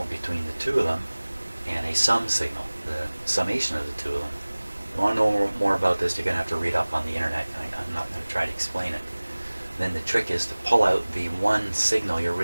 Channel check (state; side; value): inverted; both; correlation -1.00